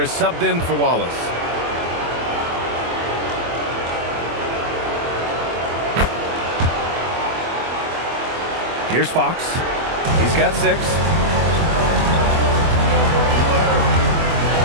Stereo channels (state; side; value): late; left; 24 ms